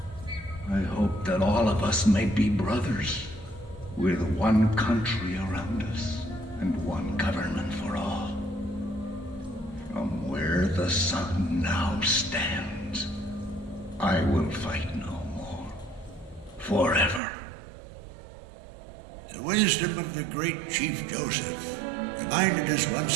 I hope that all of us may be brothers, with one country around us and one government for all. From where the sun now stands, I will fight no more, forever. The wisdom of the great Chief Joseph reminded us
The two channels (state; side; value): drops out; left; at 17.2 s